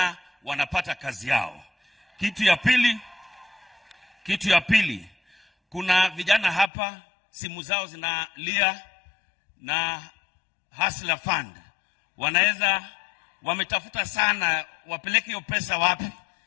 wanapata kazi yao. Kitu ya pili, kuna vijana hapa simu zao zinalia na Hustler Fund. Wametafuta sana wapeleke hiyo pesa wapi.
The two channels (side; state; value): right; drops out; at 6.7 s